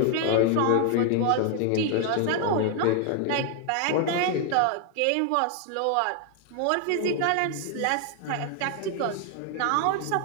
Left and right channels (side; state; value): both; different; correlation 0.00